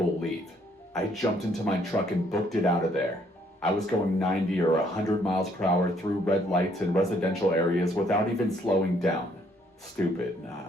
leave. I jumped into my truck and booked it out of there. I was going 90 or 100 miles per hour through red lights in residential areas without even slowing down. Stupid,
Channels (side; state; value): both; normal; correlation 0.67